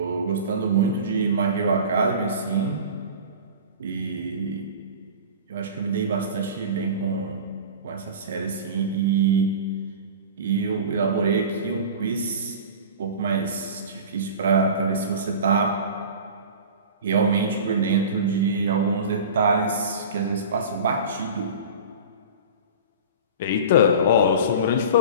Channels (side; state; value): both; inverted; correlation -0.36